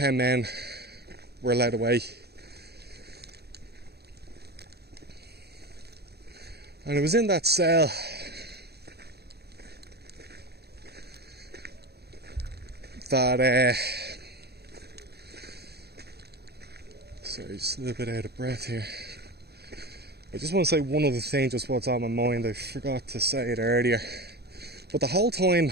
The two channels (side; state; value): left; late; 0.47 ms